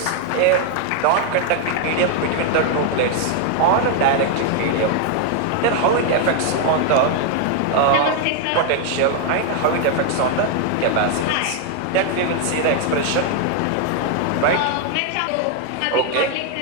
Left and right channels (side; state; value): both; different; correlation 0.00